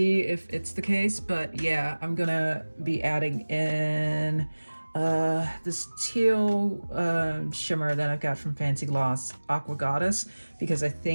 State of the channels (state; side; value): inverted; both; correlation -1.00